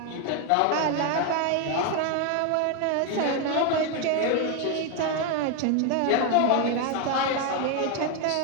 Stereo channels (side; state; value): both; different; correlation 0.01